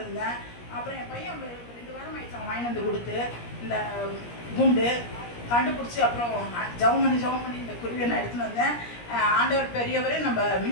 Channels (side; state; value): right; late; 17 ms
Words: அப்புறம் என் பையன் 2 வாரம் ஆயிடுச்சு அவன் வாங்கி வந்து கொடுத்து இந்த குண்டு கண்டுபிடிச்சி அப்புறம் ஜவம் பண்ணி இந்த குருவியை நான் எடுத்துன்னு வந்தேன். ஆண்டவர் பெரியவரே நம்ம